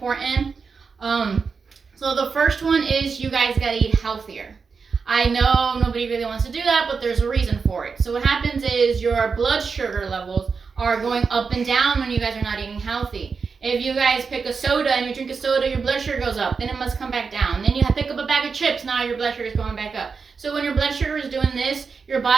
So the first one is you guys got to eat healthier. I know nobody really wants to do that, but there's a reason for it. So what happens is your blood sugar levels are going up and down when you guys are not eating healthy. If you guys pick a soda and you drink a soda, your blood sugar goes up. Then it must come back down. Then you pick up a bag of chips. Now your blood sugar is going back up. So when your blood sugar is doing this, your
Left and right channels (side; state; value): left; quieter; 5.2 dB